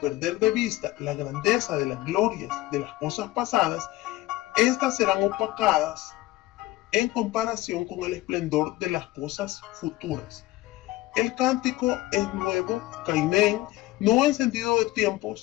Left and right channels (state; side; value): quieter; right; 17.4 dB